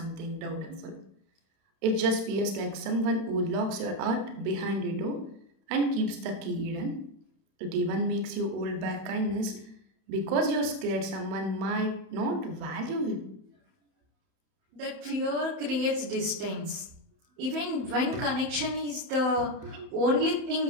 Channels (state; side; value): late; left; 31 ms